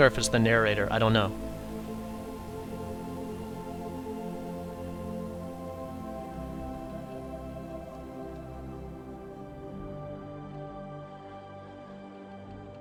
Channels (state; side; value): identical; both; correlation 1.00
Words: or if it's the narrator. I don't know.